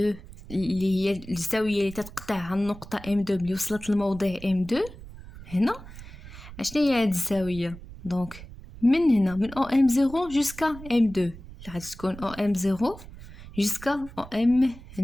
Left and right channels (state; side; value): noise; right; rumble, 16 dB below the sound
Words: اللي هي الزاويه اللي تتقطعها النقطه M2 اللي وصلت للموضع M2 هنا، اشنو هي هاد الزاويه؟ دونك من هنا من OM0 jusqu'à M2 اللي غتكون OM0 jusqu'à